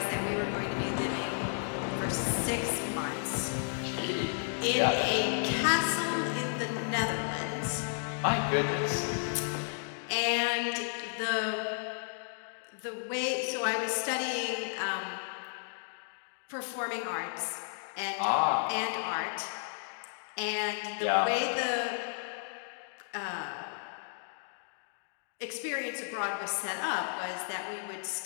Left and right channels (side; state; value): right; silent; digital silence